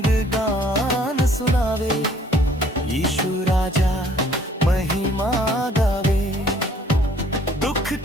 गान सुनावे, यीशु राजा महिमा गावे। दुख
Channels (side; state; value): both; normal; correlation 0.59